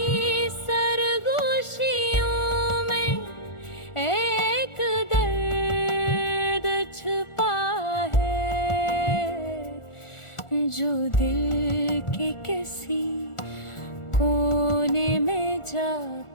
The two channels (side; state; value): right; late; 1.4 ms